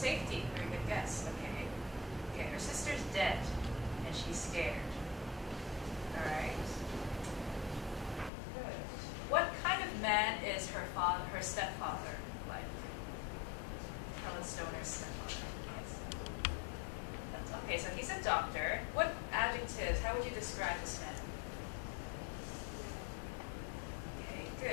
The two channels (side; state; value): right; drops out; at 8.3 s